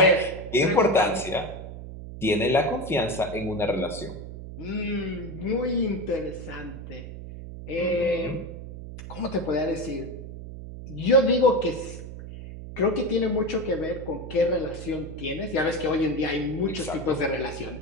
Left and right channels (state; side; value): noise; right; hum, 11 dB below the sound